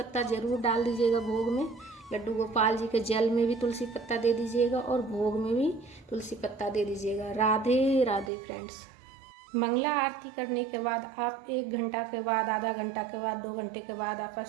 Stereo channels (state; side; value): drops out; left; at 8.3 s